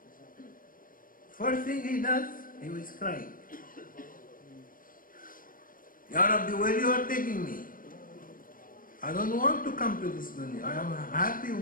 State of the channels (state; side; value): late; right; 0.40 ms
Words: First thing he does, he was crying. Ya Rabbi, where you are taking me? I don't want to come to this dunya. I am happy